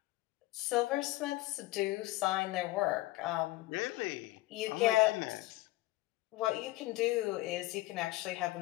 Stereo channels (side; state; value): right; quieter; 18.6 dB